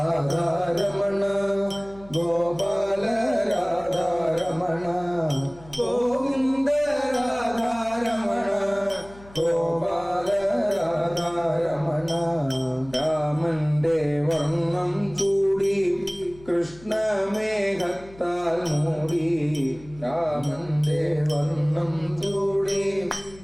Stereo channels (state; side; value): noise; left; hum, 21 dB below the sound